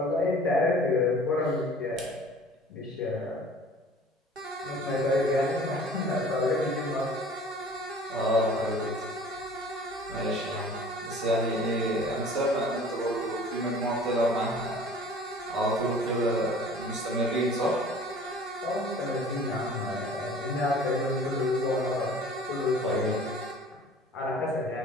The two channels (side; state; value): both; normal; correlation 0.47